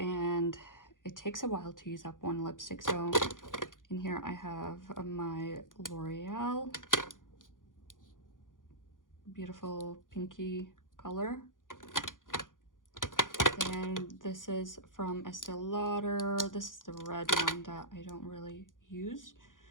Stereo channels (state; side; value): late; right; 0.89 ms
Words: it takes a while to use up one lipstick. So in here I have my L'Oreal beautiful pinky color. And this is from Estee Lauder. This is the red one that I don't really use.